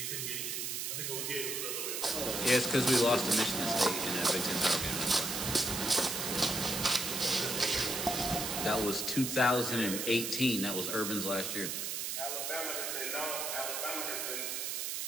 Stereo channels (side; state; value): right; noise; hiss, 2 dB below the sound